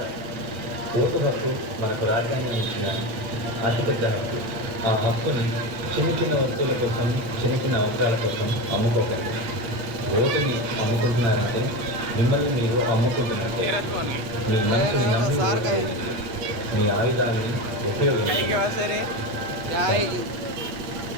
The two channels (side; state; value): left; late; 8.4 ms